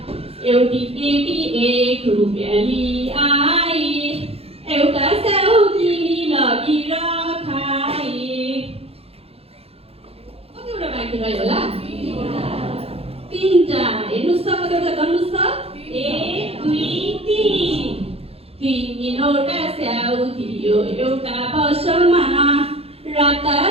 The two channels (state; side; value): late; left; 0.29 ms